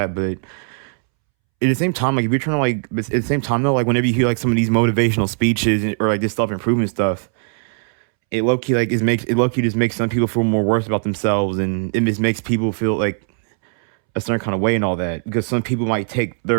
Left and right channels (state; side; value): silent; left; 66 dB below the other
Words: But at the same time, like if you're trying to like, but at the same time though, like whenever you hear like some of these motivational speeches or like this self improvement stuff, it low key just makes some people feel more worse about themselves, and it just makes people feel like a certain kind of way and all that, because some people might take